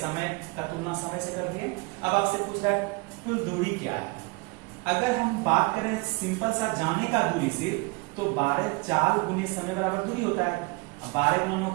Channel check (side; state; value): left; quieter; 27.2 dB